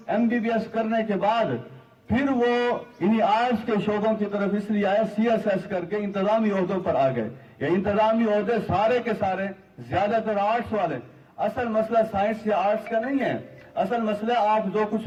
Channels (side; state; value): both; identical; correlation 1.00